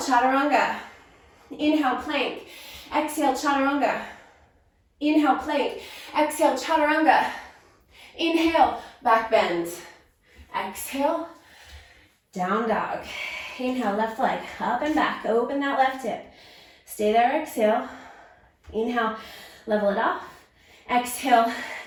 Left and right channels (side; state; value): both; identical; correlation 1.00